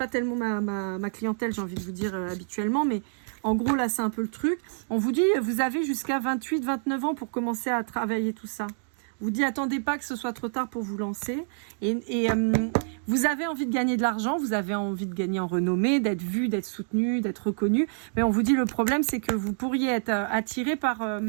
tellement ma clientèle, j'ai envie de vous dire habituellement, mais en gros là c'est un peu le truc. On vous dit, vous avez jusqu'à 28-29 ans pour commencer à travailler tout ça. On vous dit, attendez pas que ce soit trop tard pour vous lancer. Et vous avez envie de gagner de l'argent, vous avez envie de gagner en renommée, d'être vu, d'être soutenu, d'être reconnu. Mais on vous dit, le problème c'est que vous pourriez être attiré par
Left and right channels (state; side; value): silent; left; digital silence